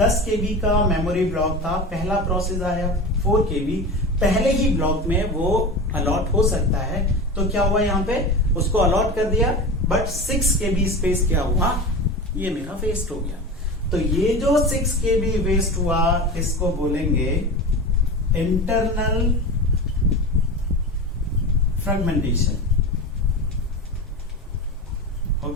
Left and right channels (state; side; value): normal; both; correlation 0.28